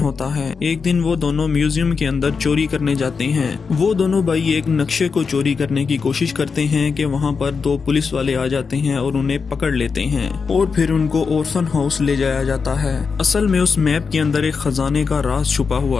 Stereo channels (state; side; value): quieter; right; 5.3 dB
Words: है। एक दिन वो दोनों म्यूजियम के अंदर चोरी करने जाते हैं। वो दोनों भाई एक नक्शे को चोरी करने की कोशिश करते हैं कि वहाँ पर दो पुलिस वाले आ जाते हैं और उन्हें पकड़ लेते हैं और फिर उनको ऑर्फन हाउस ले जाया जाता है। असल में उस मैप के अंदर एक खजाने का राज छुपा